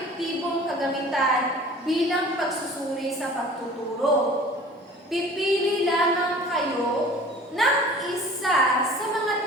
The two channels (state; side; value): normal; both; correlation 0.45